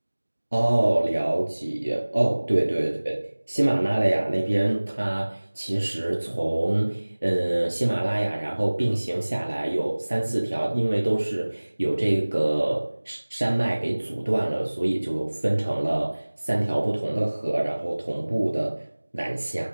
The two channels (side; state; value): both; inverted; correlation -1.00